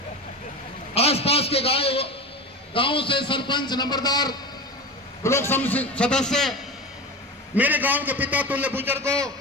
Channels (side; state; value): both; normal; correlation 0.27